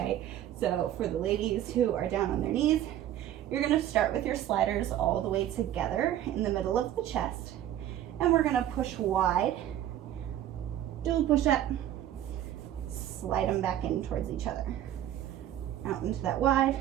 So for the ladies who are down on their knees, you're gonna start with your sliders all the way together in the middle of the chest, and we're gonna push wide, do a push-up, slide them back in towards each other. Out into that wide,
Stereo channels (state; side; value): quieter; left; 12.0 dB